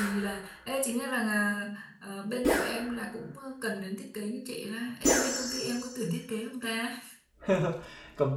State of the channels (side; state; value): both; identical; correlation 1.00